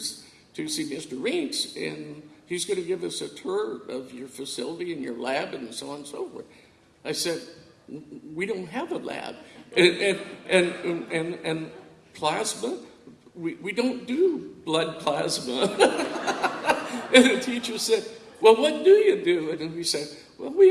see Mr. Reitz, and he's going to give us a tour of your facility and your lab and so on and so forth. I said, we don't have a lab. And plasma, we don't do blood plasma. And the teacher said, well, what do you do? And we said, well, we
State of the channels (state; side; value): identical; both; correlation 1.00